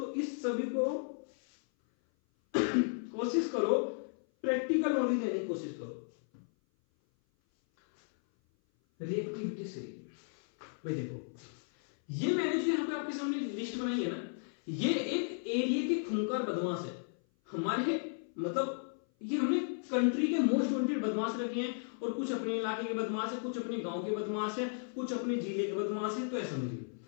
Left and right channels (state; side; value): silent; right; 55 dB below the other